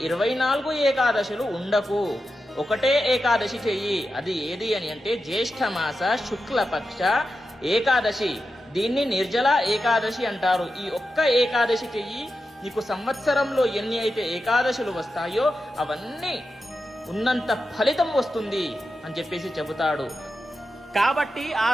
24 ఏకాదశులు ఉండకు, ఒకటే ఏకాదశి చెయ్యి. అది ఏది అని అంటే జ్యేష్ఠమాస శుక్లపక్ష ఏకాదశి. దీన్ని నిర్జల ఏకాదశి అంటారు. ఈ ఒక్క ఏకాదశి చెయ్యి, నీకు సంవత్సరంలో ఎన్ని అయితే ఏకాదశులు వస్తాయో అవన్నీ ఉన్నంత ఫలితం వస్తుంది అని చెప్పేసి చెబుతాడు. కాబట్టి ఆ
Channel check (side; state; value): both; normal; correlation 0.90